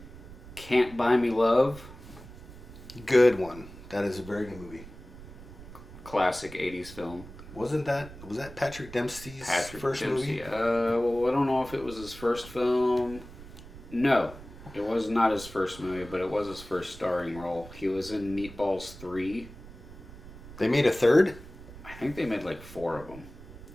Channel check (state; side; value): noise; right; rumble, 16 dB below the sound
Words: Can't Buy Me Love. Good one. That is a very good movie. Classic 80s film. Was that Patrick Dempsey's first Dempsey. movie? Well, I don't know if it was his first film. No, it was not his first movie, but it was his first starring role. He was in Meatballs 3. They made a third? I think they made like 4 of them.